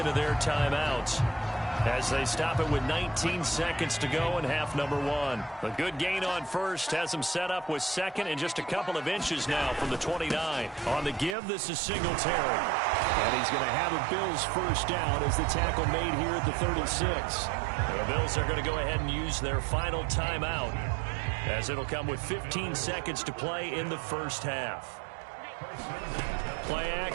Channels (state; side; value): drops out; left; at 11.4 s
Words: of their timeouts as they stop it with 19 seconds to go in half number 1. A good gain on first has them set up with 2nd and just a couple of inches now from the 29. On the give, this is Singletary. And he's going to have a Bills first down as the tackle made here at the 36. The Bills are going to go ahead and use their final timeout, as it'll come with 15 seconds to play in the first half. Play